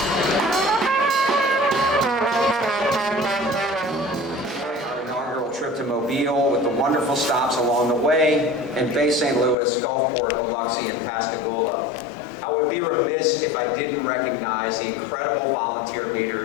additional stops along the way in Bay St. Louis, Gulfport, Biloxi, and Pascagoula. I would be remiss if I didn't recognize the incredible volunteer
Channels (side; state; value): right; drops out; at 9.6 s